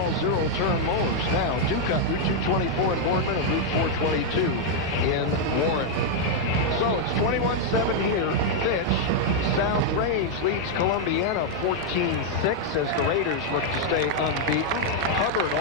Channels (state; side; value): normal; both; correlation -0.01